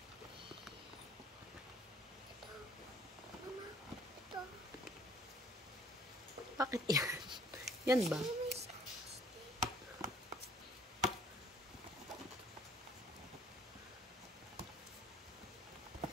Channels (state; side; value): normal; both; correlation 0.58